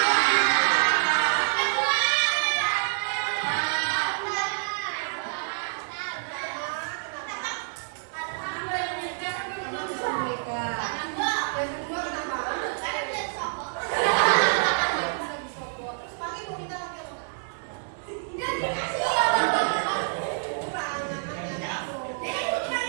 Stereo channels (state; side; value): silent; left; digital silence